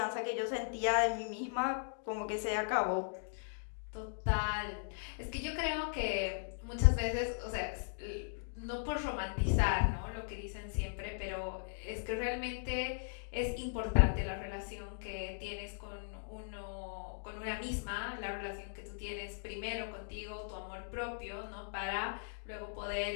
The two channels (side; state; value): right; silent; digital silence